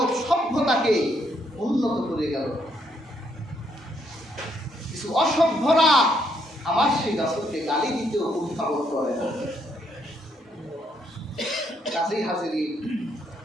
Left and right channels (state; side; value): normal; both; correlation 0.73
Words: সভ্যতাকে উন্নত করে গেল, কিছু অসভ্যরা আমার সেই রাসূলকে গালি দিতেও উদ্ভাবন করে। কাজেই হাজিরিন,